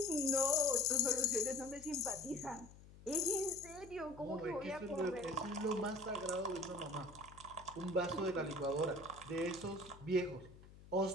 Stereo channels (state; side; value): noise; left; hum, 19 dB below the sound